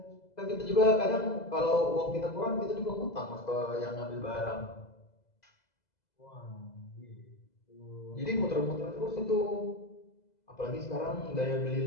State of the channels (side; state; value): right; late; 2.0 ms